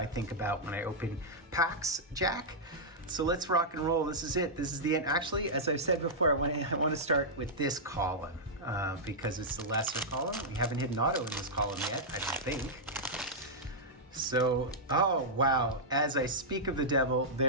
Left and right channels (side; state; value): both; normal; correlation -0.09